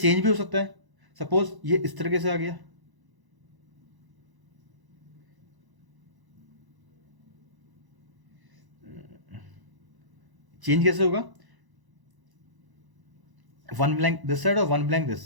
भी हो सकता है, सपोज ये इस तरीके से आ गया, चेंज कैसे होगा? 1 ब्लैंक दिस साइड और 1 ब्लैंक दिस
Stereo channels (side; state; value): left; late; 1.0 ms